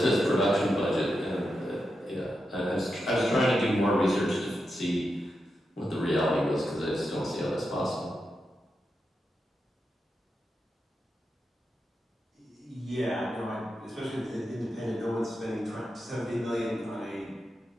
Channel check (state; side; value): normal; both; correlation 0.87